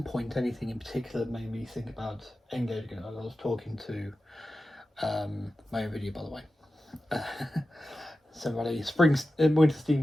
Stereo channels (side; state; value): both; normal; correlation 0.93